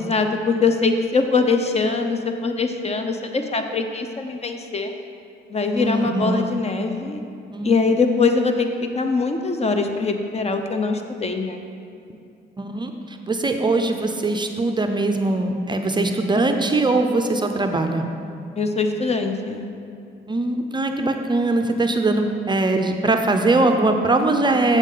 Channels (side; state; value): both; normal; correlation 0.57